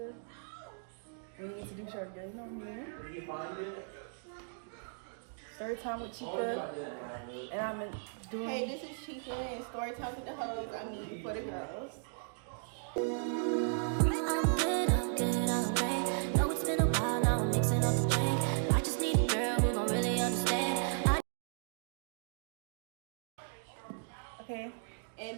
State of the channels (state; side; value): silent; left; digital silence